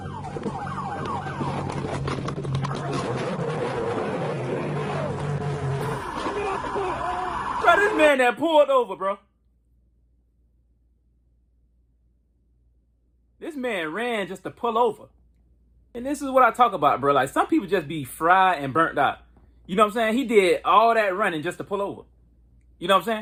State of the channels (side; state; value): both; identical; correlation 1.00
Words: Bro, this man that pulled over, bro. This man ran just to pull over. And this is what I talk about, bro. Like, some people just be fried and burnt out. You know what I'm saying? He did all that running just to pull over. You know what I'm